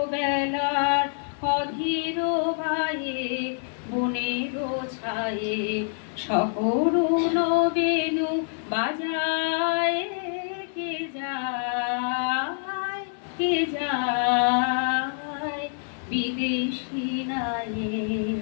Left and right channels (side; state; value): right; silent; 61 dB below the other